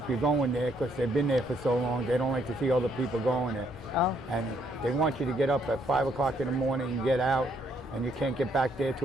you're going there because they've been there for so long. They don't like to see other people going there. Oh. And they want you to get up at 5 o'clock in the morning and get out, and you can't get back there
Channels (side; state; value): both; normal; correlation 0.71